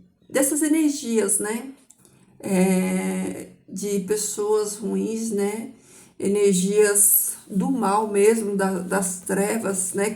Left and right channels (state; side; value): identical; both; correlation 1.00